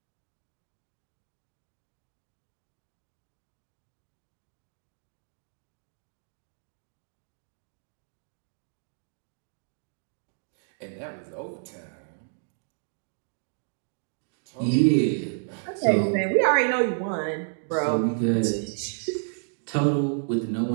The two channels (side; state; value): left; silent; digital silence